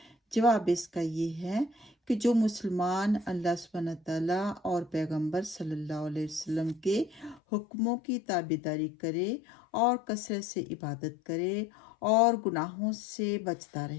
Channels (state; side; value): drops out; right; at 7.4 s